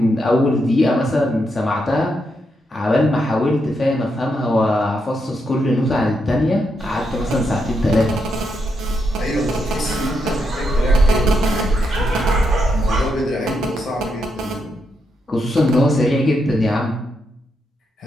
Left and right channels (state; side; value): normal; both; correlation 0.81